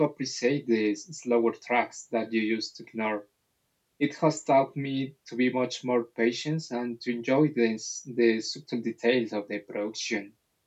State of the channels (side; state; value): both; identical; correlation 1.00